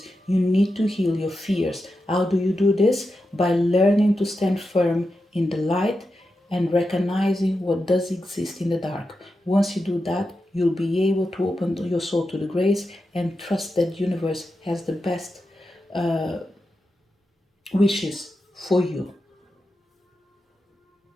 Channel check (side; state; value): both; normal; correlation 0.89